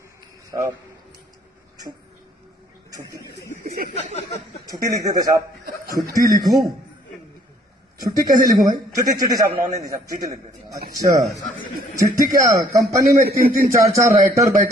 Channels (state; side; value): normal; both; correlation 0.61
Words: साहब छुट्टी लिख देते साहब। छुट्टी लिखूं? छुट्टी कैसे लिखूं भाई? चिट्ठी साहब, नॉन हिंदी साहब, चिट्ठी लिख देते। अच्छा चिट्ठी क्या? कंपनी में 3-3 4-4 राइटर